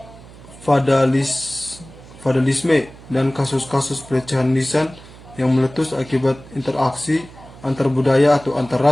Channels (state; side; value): noise; right; hum, 20 dB below the sound